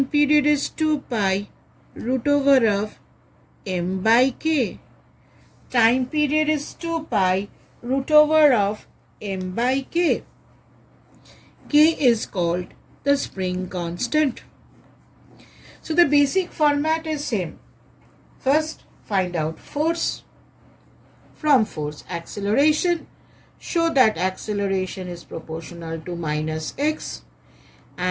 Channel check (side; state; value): both; identical; correlation 1.00